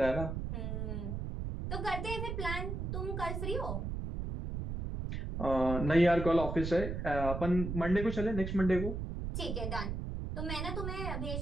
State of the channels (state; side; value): noise; right; rumble, 4 dB below the sound